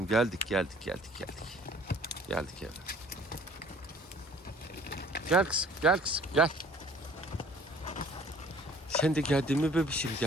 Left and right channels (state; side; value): normal; both; correlation 0.52